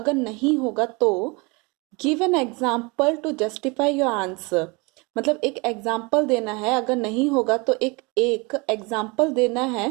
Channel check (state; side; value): quieter; left; 27.8 dB